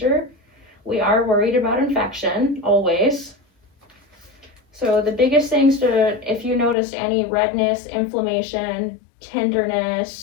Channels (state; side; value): drops out; right; at 6.8 s